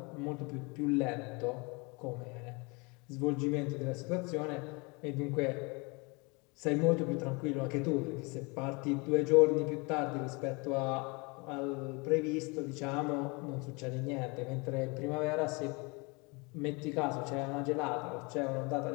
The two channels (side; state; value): right; quieter; 29.0 dB